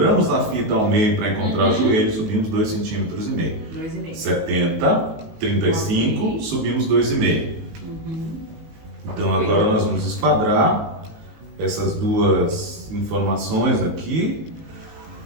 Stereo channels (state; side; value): late; left; 19 ms